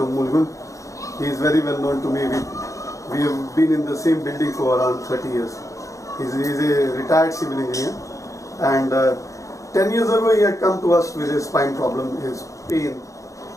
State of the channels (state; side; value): late; right; 0.15 ms